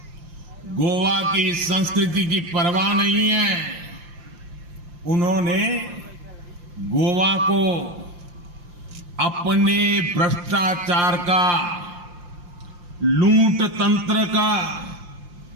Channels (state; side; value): late; left; 5.7 ms